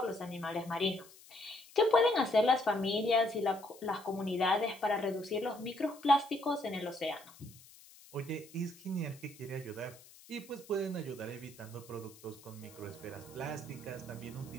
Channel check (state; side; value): noise; left; hiss, 22 dB below the sound